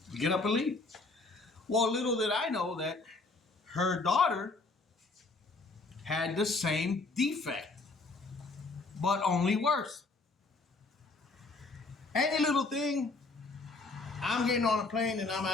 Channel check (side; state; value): right; quieter; 3.6 dB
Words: get up and leave. Well, little did I know that her daughter had the same defect, but only worse. Any little thing, I'm getting on a plane and I'm